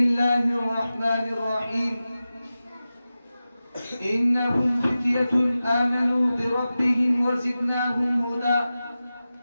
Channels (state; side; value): inverted; both; correlation -0.94